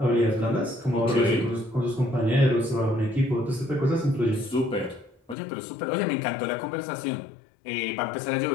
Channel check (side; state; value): right; drops out; at 5.4 s